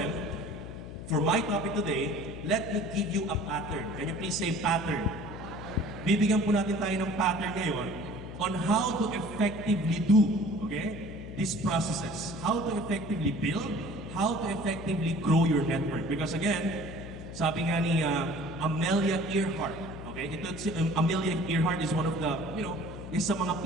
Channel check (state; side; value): noise; left; hum, 11 dB below the sound